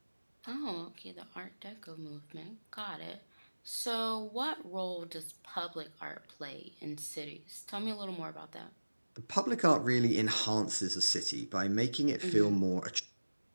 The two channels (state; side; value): inverted; both; correlation -1.00